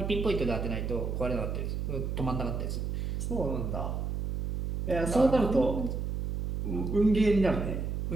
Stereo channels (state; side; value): noise; right; hum, 2 dB below the sound